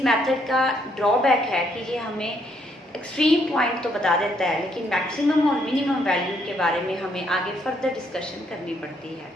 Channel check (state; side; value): normal; both; correlation 0.71